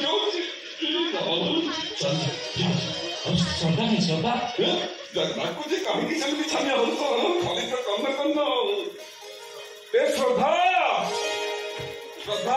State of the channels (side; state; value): both; identical; correlation 1.00